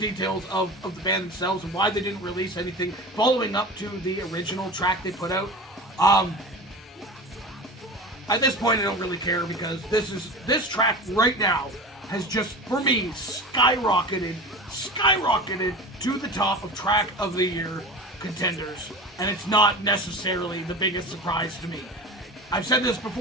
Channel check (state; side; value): normal; both; correlation 0.32